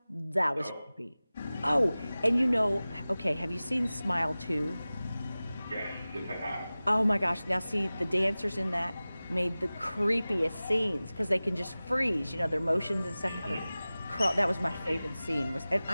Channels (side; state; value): both; inverted; correlation -0.97